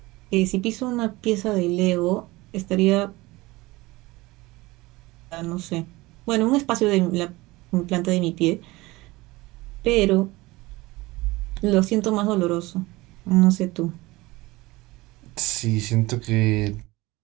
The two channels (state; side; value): quieter; left; 20.9 dB